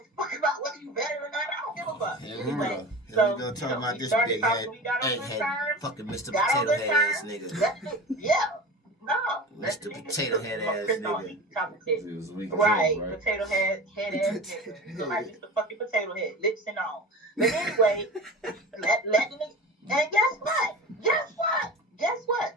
fuck about whether you better or not. I don't give a fuck. Here we Anyway, go. Here so we go talking about we this started big talking, head, we got on good egghead, terms. fucking Mr. Got on Potato good Head ass terms. nigga. That's it. Yeah. No. Mr. Potato Head ass Chris don't nigga. eat chocolate chip. It was weak as Right, hell, right? potato head ass nigga. You look like Mr. fucking Potato Head, lips and all. But anyway, let the nigga. And guess what?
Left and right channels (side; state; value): both; normal; correlation 0.33